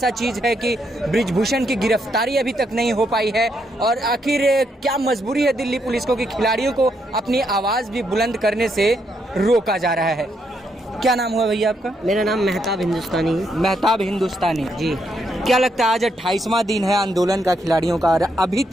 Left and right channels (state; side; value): normal; both; correlation 0.77